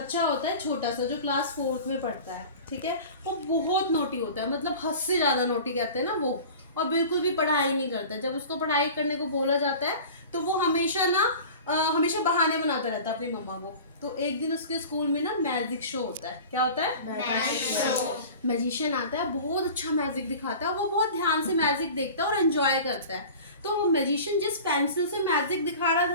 होता है छोटा सा जो क्लास 4th में पढ़ता है। ठीक है, वो बहुत नोटी होता है, मतलब हद से ज़्यादा नोटी कहते हैं ना वो, और बिल्कुल भी पढ़ाई नहीं करता है। जब उसको पढ़ाई करने को बोला जाता है तो वो हमेशा बहाने बनाता रहता है अपनी मम्मा को। तो एक दिन उसके स्कूल में ना मैजिक शो होता है। क्या होता है? Magic show. मैजिशियन आता है, बहुत अच्छा मैजिक दिखाता है, वो बहुत ध्यान से मैजिक देखता है और एंजॉय करता है। तो वो मैजिशियन जिस पेंसिल से मैजिक दिखा रहा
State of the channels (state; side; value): inverted; both; correlation -0.38